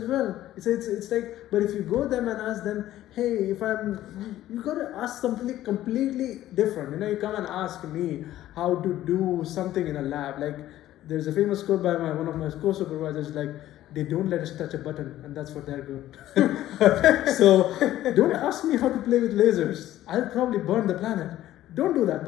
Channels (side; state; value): right; quieter; 13.8 dB